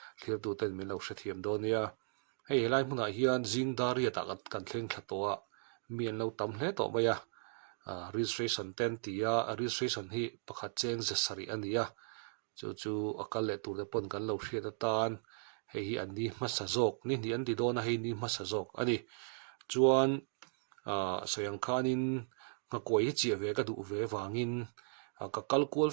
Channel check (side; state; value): left; silent; digital silence